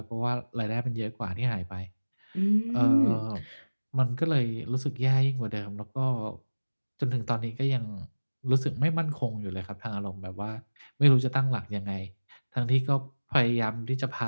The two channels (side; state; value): both; inverted; correlation -1.00